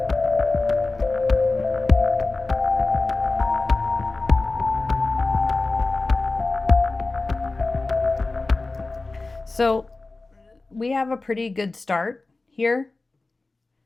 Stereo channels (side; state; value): right; quieter; 3.3 dB